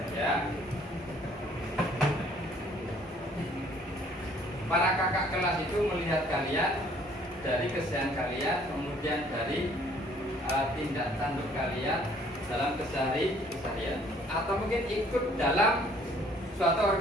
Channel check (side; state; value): both; normal; correlation 0.59